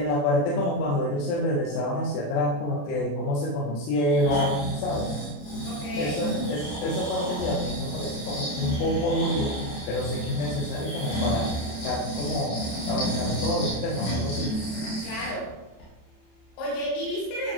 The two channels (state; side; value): late; right; 27 ms